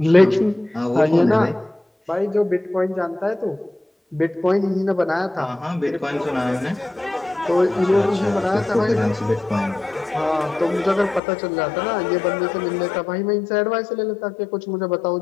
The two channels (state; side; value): drops out; right; at 11.2 s